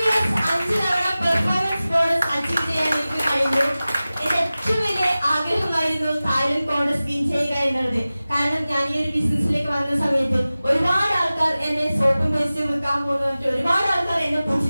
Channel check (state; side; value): inverted; both; correlation -0.97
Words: 5 തവണ പെർഫോമൻസ് ബോണസ് അച്ചീവ് ചെയ്യാൻ എനിക്ക് കഴിഞ്ഞു. എന്റെ ഏറ്റവും വലിയ ആഗ്രഹമായിരുന്നു തായ്ലൻഡ് കോൺഗ്രസ് വിൻ ചെയ്യുക എന്നുള്ളത്. കാരണം ഞാൻ ഈ ഒരു ബിസിനസ്സിലേക്ക് വന്ന സമയത്ത് ഒരുപാട് ആൾക്കാർ എന്നെ സോപ്പും പേസ്റ്റും വെക്കാൻ പോകുന്ന ഒരുപാട് ആൾക്കാർ എന്നെ